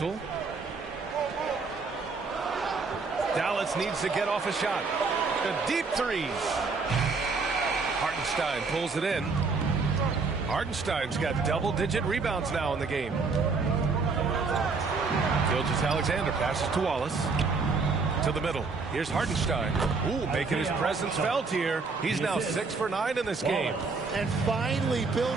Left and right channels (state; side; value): quieter; left; 4.4 dB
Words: Dallas needs to get off a shot. The deep three. Hartenstein pulls it in. Hartenstein's got double-digit rebounds now in the game. Gilgeous-Alexander passes to Wallace. To the middle. Here's Hartenstein. Ooh, making his presence felt here. He's now 6 for 9 in this game. And finally